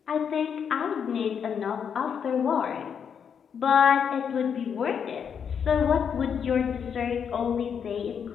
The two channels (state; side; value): quieter; right; 7.4 dB